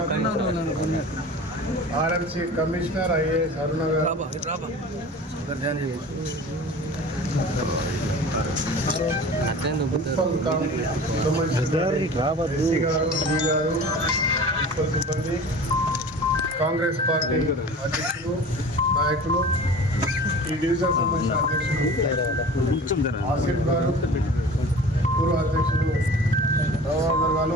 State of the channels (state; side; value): normal; both; correlation 0.40